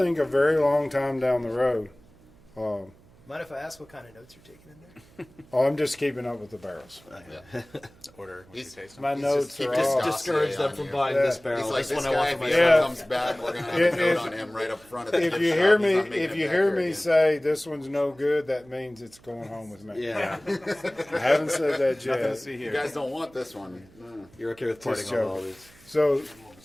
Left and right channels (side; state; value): right; noise; hum, 27 dB below the sound